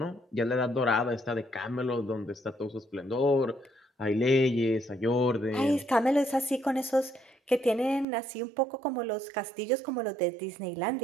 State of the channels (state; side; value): drops out; left; at 8.1 s